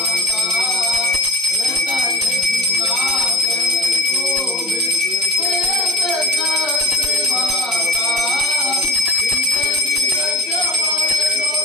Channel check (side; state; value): both; normal; correlation 0.43